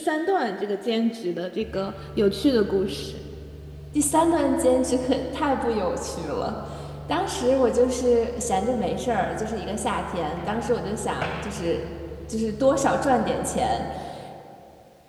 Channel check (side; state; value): both; identical; correlation 1.00